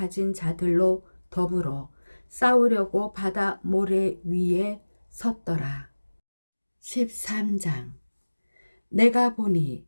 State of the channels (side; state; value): both; inverted; correlation -1.00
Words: 자들로 더불어 싸우려고 바다 모래 위에 섰더라. 13장 내가 보니